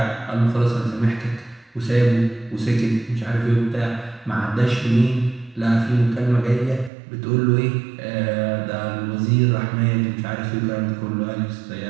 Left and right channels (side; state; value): left; drops out; at 6.9 s